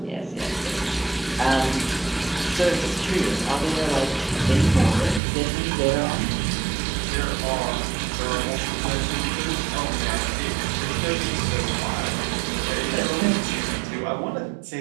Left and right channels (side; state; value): left; drops out; at 5.2 s